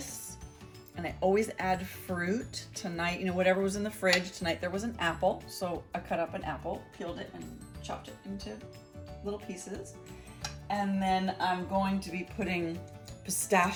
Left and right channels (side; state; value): both; identical; correlation 1.00